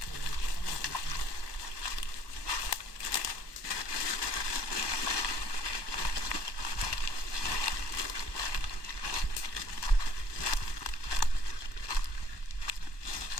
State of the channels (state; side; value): late; right; 1.2 ms